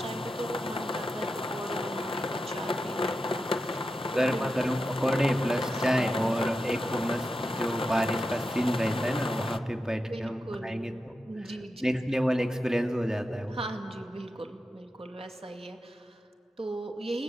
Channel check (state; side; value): normal; both; correlation 0.89